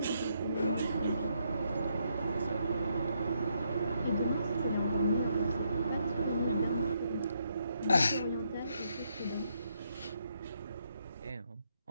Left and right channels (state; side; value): inverted; both; correlation -0.76